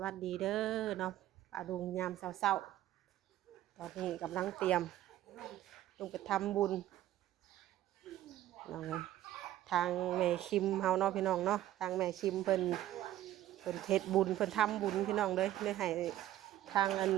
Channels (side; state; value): left; quieter; 13.4 dB